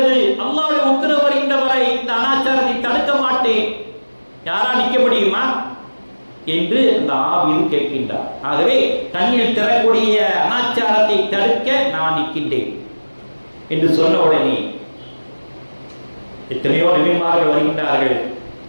அல்லாஹ்வுடைய உத்தரவு வருகின்ற வரை இந்த அனாச்சாரத்தை தடுக்க மாட்டேன், யாரா நிற்க முடியுமா என்று அந்த ஆவியில் கேட்கின்றார். ஆகவே கண்ணில் தரக்கூடிய அனாச்சாரத்தை தடுக்க நான் நிற்கின்றேன் என்று சொன்ன உடனே எத்தனையோ நபிமார்கள் வருகின்றார்கள்.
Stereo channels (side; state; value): both; inverted; correlation -1.00